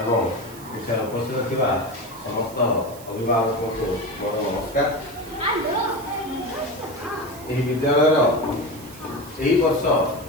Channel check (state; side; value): noise; right; hiss, 19 dB below the sound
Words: ଏବଂ ଏଠାରେ ଉପସ୍ଥିତ ଥିବା ସମସ୍ତ ଅଭିଭାବକଙ୍କୁ ମୋର ନମସ୍କାର। ଏହି ବିଦ୍ୟାଳୟର ଏହି ବର୍ଷ